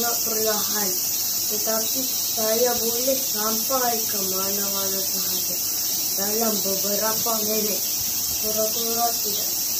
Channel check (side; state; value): both; identical; correlation 1.00